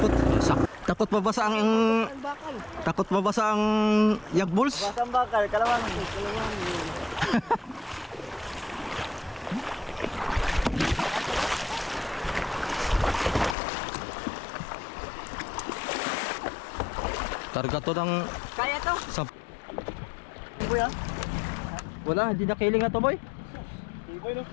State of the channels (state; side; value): drops out; right; at 13.6 s